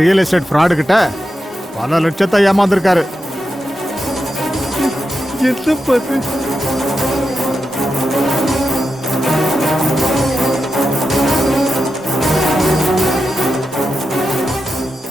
ரியல் எஸ்டேட் ஃப்ராடு கிட்ட பல லட்சத்தை ஏமாந்திருக்காரு. என்ன பாத்து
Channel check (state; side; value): normal; both; correlation 0.89